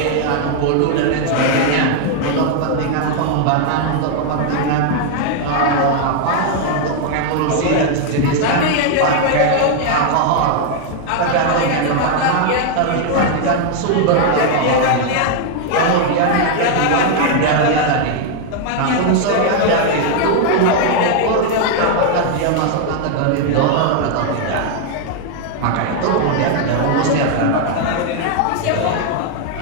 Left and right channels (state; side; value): different; both; correlation 0.00